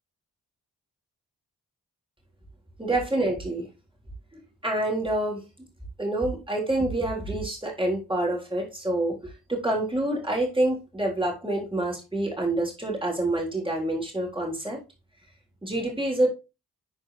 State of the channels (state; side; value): normal; both; correlation 0.67